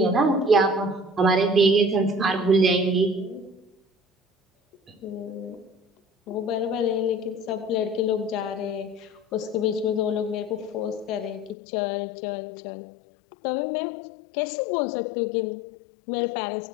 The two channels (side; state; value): right; drops out; at 11.6 s